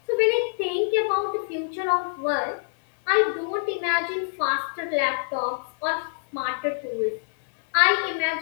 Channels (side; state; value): right; silent; 62 dB below the other